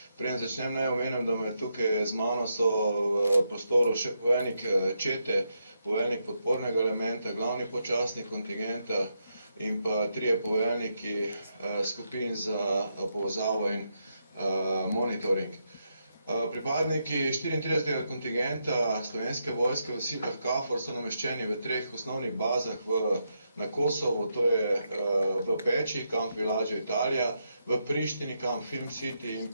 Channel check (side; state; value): both; inverted; correlation -0.82